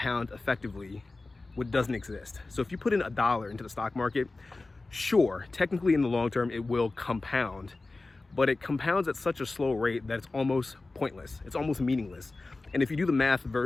effectively what doesn't exist. So if you put in $1 into the stock market, sure, technically in the long term, it will compound, but it compounds at such a slow rate that it's almost pointless. It's almost meaningless. And if you do the math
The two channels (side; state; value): right; quieter; 3.4 dB